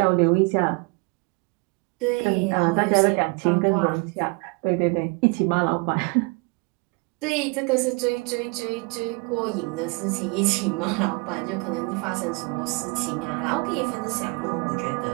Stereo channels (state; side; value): quieter; left; 29.7 dB